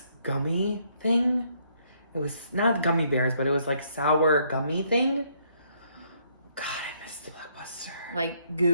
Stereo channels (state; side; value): inverted; both; correlation -0.70